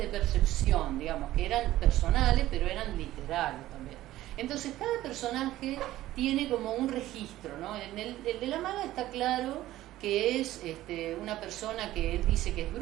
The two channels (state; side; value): quieter; left; 15.1 dB